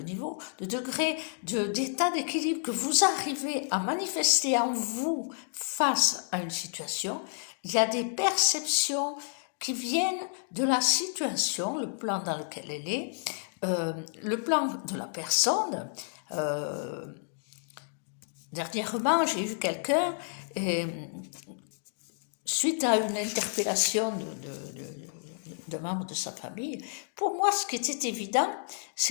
niveau, le degré d'état d'équilibre que vous arrivez à manifester en vous face à une situation, il y a des perceptions qui viennent de la situation, le plan dans lequel elle est, le plan de la personne. Dernièrement, j'ai eu quelqu'un, suite à une interpellation de membres de sa famille, pour moi, ce qui était évident,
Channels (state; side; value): silent; right; digital silence